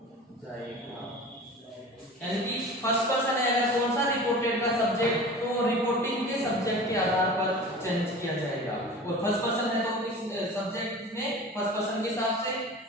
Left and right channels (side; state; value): both; normal; correlation 0.37